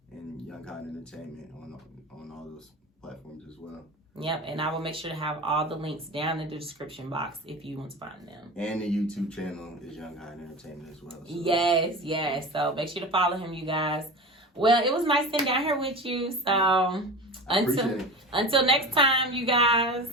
and Young Kind Entertainment on all those platforms as well. Yep, and I will make sure to have all the links down in the description box if you want to find them. And the YouTube channel is Young Kind Entertainment as well. So. Yes. So make sure to follow him, you guys. Well, it was nice sitting down here with you. So until next time, you guys.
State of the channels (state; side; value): normal; both; correlation 0.31